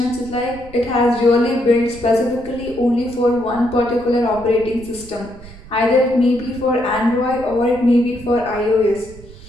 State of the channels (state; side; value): noise; right; rumble, 18 dB below the sound